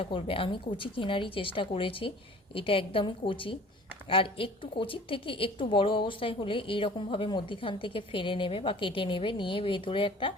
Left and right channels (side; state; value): both; normal; correlation 0.47